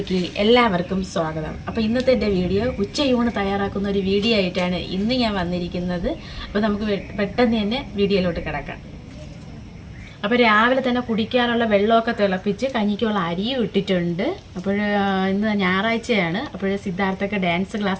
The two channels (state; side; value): identical; both; correlation 1.00